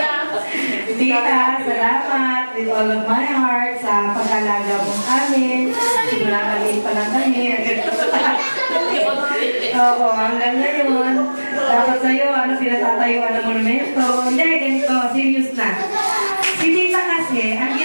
Tita, salamat with all of my heart sa pag-alaga mo amin. Simula maliit pa lang kami. Oo, hanggang ngayon. Tapos sa'yo, pinatatayuan ng monumento. Hindi, ganito, serious na. Si Tita kasi, ang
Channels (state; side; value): inverted; both; correlation -1.00